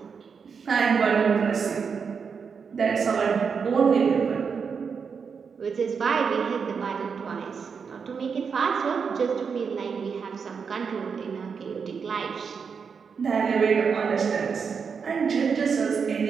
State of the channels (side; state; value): left; quieter; 6.0 dB